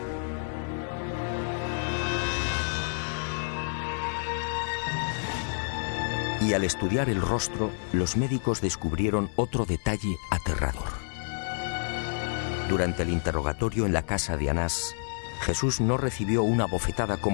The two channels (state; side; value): silent; right; 59 dB below the other